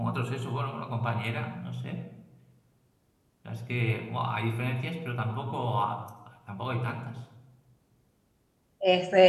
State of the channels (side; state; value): both; identical; correlation 1.00